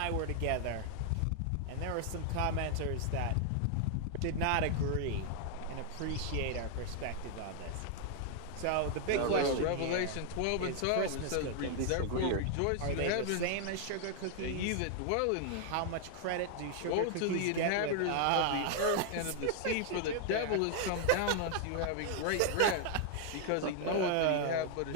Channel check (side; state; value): both; different; correlation 0.00